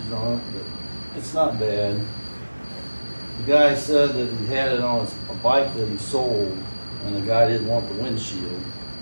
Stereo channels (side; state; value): both; inverted; correlation -1.00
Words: on it, but it's not bad. The guy said that he had it on a bike that he sold, and the guy didn't want the windshield,